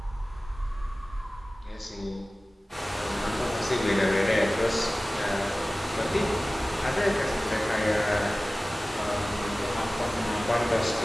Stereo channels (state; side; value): normal; both; correlation 0.97